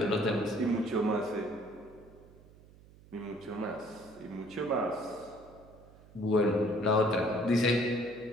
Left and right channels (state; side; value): noise; right; hum, 23 dB below the sound